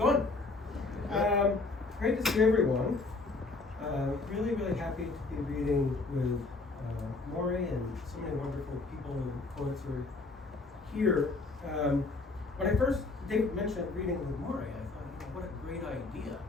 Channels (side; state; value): right; quieter; 3.6 dB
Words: Great to see everyone. Really, really happy to be reading with Maury and so many wonderful people and poets who are here. When I first, David mentioned reading with Maury, I thought, what a great idea.